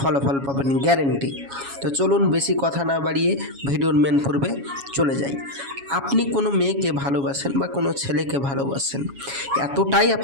পাবেন গ্যারেন্টি। তো চলুন বেশি কথা না বাড়িয়ে ভিডিওর মেন পর্বে চলে যাই। আপনি কোনো মেয়েকে ভালোবাসেন বা কোনো ছেলেকে ভালোবাসেন, এতটাই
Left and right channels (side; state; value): left; late; 7.2 ms